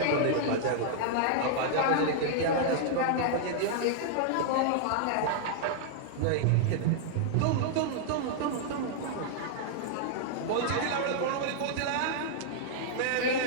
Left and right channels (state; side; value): different; both; correlation -0.01